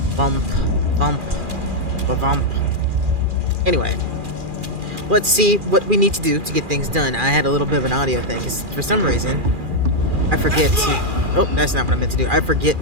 Bump, bump, bump. Anyway, let's see what we need to do to get things done. I had a little bit of an audio thing, because for some reason, I forget to... Oh, that's not what I meant to do. I forget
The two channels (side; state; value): left; late; 2.4 ms